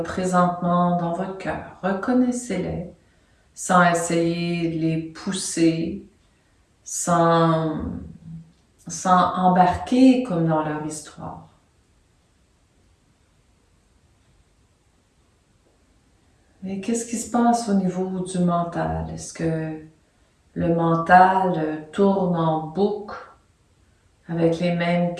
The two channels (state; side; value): identical; both; correlation 1.00